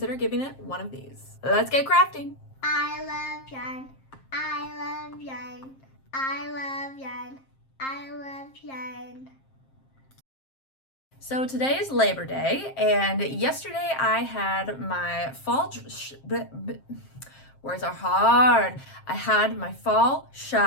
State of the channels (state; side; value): late; right; 7.5 ms